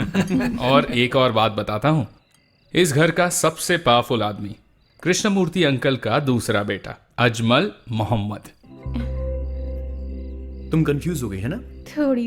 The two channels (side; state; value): both; identical; correlation 1.00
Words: और एक और बात बताता हूँ, इस घर का सबसे पावरफुल आदमी कृष्णमूर्ति अंकल का दूसरा बेटा अजमल मोहम्मद। तुम कंफ्यूज हो गई है ना?